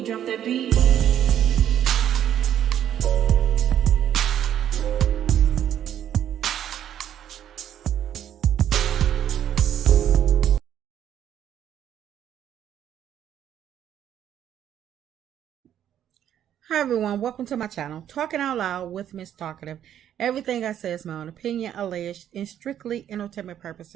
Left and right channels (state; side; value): quieter; left; 10.4 dB